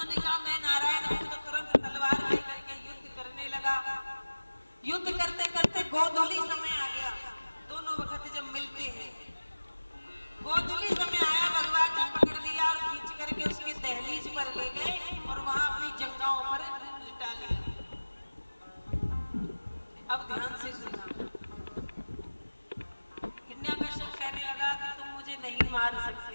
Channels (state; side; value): inverted; both; correlation -1.00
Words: कहा मैं नारायण हूं, तो तुरंत तलवार लेकर के युद्ध करने लगा। युद्ध करते करते गोधूली समय आ गया, दोनों वक्त जब मिलते हैं गोधूली समय आया, भगवान ने पकड़ लिया और खींच करके उसकी दहलीज पर ले गए और वहां अपनी जंघाओं पर लिटा लिया। अब ध्यान से सुनना। हिरण्यकश्यप कहने लगा कि तुम मुझे नहीं मार सकते।